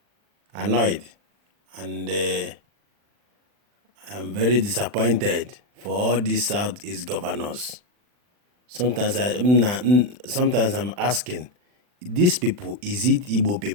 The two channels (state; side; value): late; left; 39 ms